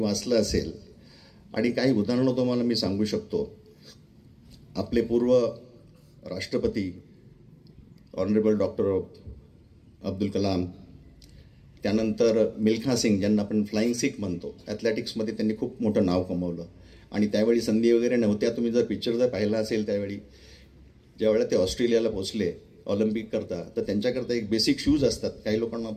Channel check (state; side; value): identical; both; correlation 1.00